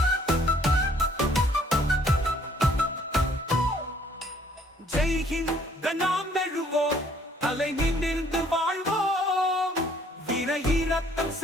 ஜெய்ஹிந்த் நாம் எழுவோம், தலை நிமிர்ந்து வாழ்வோம். விரையிறக்கம்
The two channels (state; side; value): normal; both; correlation 0.61